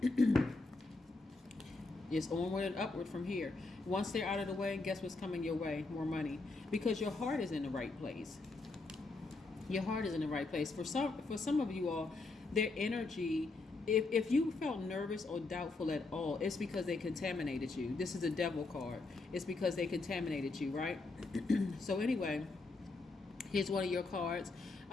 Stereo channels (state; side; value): quieter; right; 3.5 dB